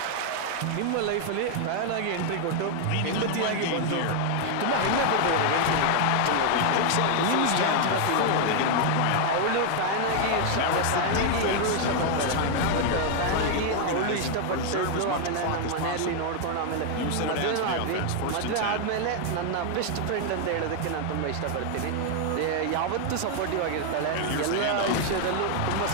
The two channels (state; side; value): different; both; correlation 0.00